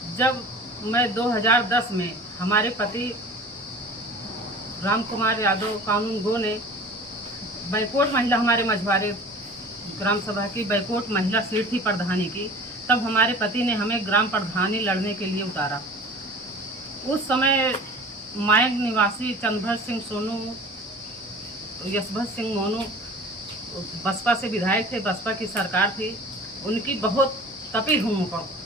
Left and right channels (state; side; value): normal; both; correlation 0.41